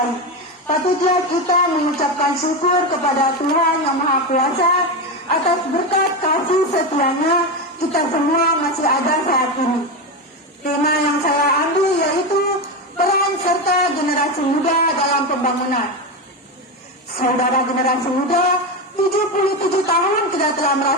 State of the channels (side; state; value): both; normal; correlation 0.15